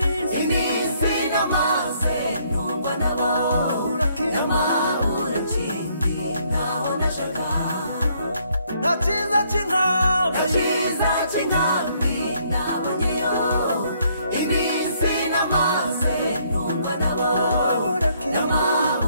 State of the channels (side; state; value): both; inverted; correlation -0.68